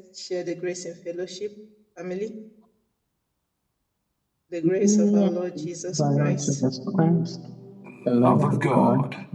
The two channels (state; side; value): identical; both; correlation 1.00